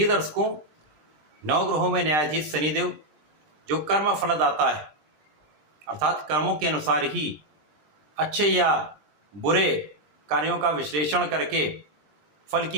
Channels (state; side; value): late; left; 20 ms